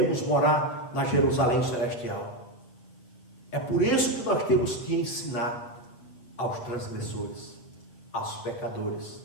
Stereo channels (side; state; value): right; late; 7.9 ms